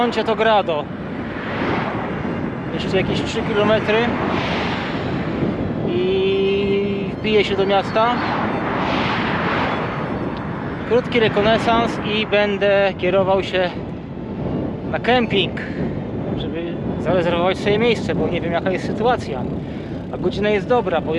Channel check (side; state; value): both; identical; correlation 1.00